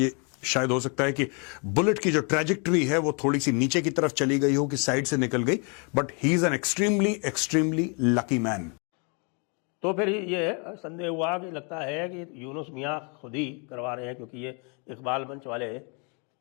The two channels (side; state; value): right; quieter; 35.5 dB